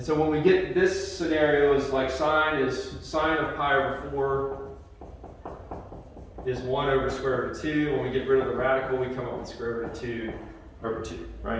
so when we get this scenario is like sine of pi over 4 is 1 over square root of 2. When we get rid of the radical, we come up with square root of 2 over 2,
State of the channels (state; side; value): identical; both; correlation 1.00